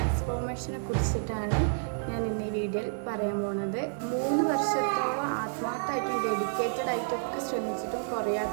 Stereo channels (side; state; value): left; silent; digital silence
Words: കുറിച്ചിട്ടാണ് ഞാൻ ഇന്ന് ഈ വീഡിയോയിൽ പറയാൻ പോണത്. 3 വർഷത്തോളം ആത്മാർത്ഥമായിട്ടും ഡെഡിക്കേറ്റഡ് ആയിട്ടൊക്കെ ശ്രമിച്ചിട്ടും